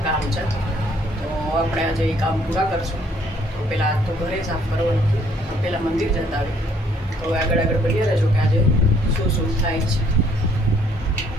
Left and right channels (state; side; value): normal; both; correlation 0.64